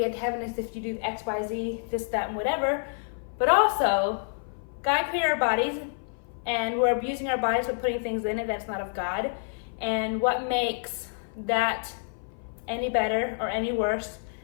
to heaven is if you do X, Y, Z, this, that, and whatever. But also, God created our bodies, and we're abusing our bodies with putting things in it that's not of God. And what makes that any better or any worse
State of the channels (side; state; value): right; silent; 56 dB below the other